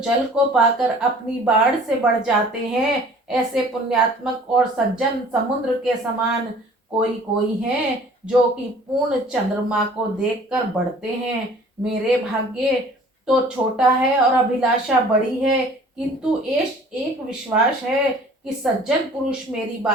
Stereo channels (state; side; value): normal; both; correlation 0.50